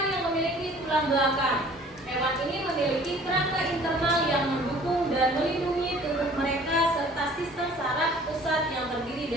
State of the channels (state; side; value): normal; both; correlation 0.51